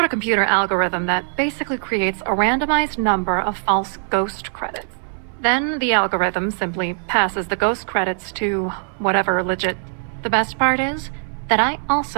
a computer algorithm that basically creates a randomized number of false ghost credits. Then the algorithm simply passes the ghost credits to whatever legit. The best part is that I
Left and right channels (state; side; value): silent; left; 64 dB below the other